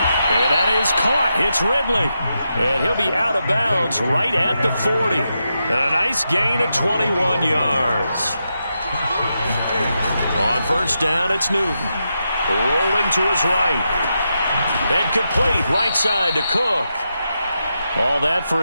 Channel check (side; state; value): both; inverted; correlation -0.86